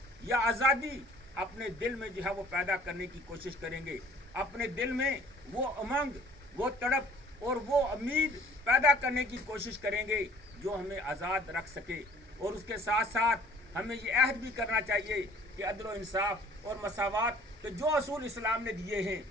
या आज़ादी अपने दिल में जो है वो पैदा करने की कोशिश करेंगे, अपने दिल में वो उमंग, वो तड़प और वो उम्मीद पैदा करने की कोशिश करेंगे जो हमें आज़ाद रख सके। और उसके साथ साथ हमें ये अहद भी करना चाहिए कि अदल व इंसाफ और मसावत के जो असूल इस्लाम ने दिए हैं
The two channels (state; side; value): normal; both; correlation 0.53